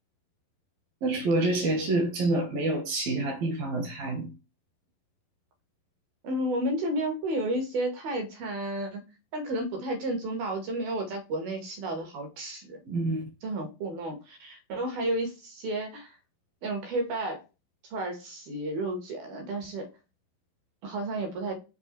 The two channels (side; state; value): left; late; 12 ms